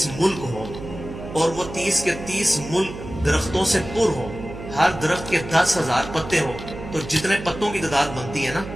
ملک ہوں اور وہ 30 کے 30 ملک درختوں سے پر ہوں، ہر درخت کے 10,000 پتے ہوں، تو جتنے پتوں کی تعداد بنتی ہے نا،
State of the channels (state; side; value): noise; right; hum, 11 dB below the sound